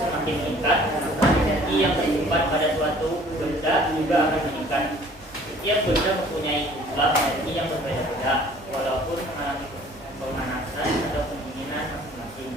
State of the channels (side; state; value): both; normal; correlation 0.53